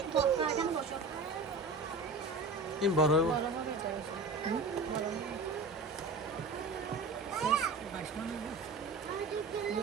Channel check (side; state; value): left; quieter; 3.6 dB